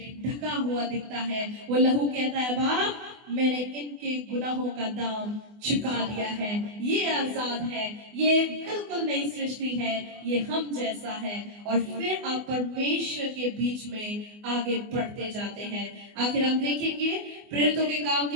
ढका हुआ दिखता है। वो लहू कहता है, बाप, मैंने इनके गुनाहों का दाम चुका दिया है, ये आजाद है, ये बिल्कुल नई सृष्टि है, ये हम जैसा है। और फिर आप परमेश्वर के बीच में आगे बढ़ते जाते हैं। आखिर हम देखेंगे प्रेरितों के काम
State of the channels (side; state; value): left; late; 24 ms